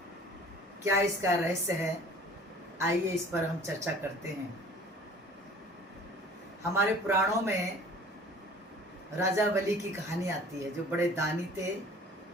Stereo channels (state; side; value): normal; both; correlation 0.48